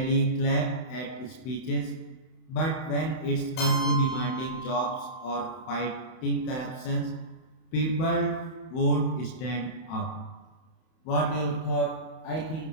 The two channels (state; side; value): late; right; 31 ms